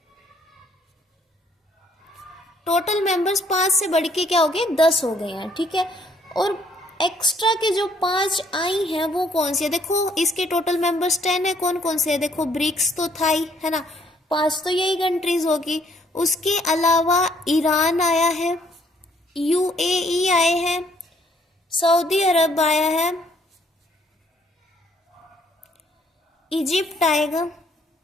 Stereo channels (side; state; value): both; normal; correlation 0.66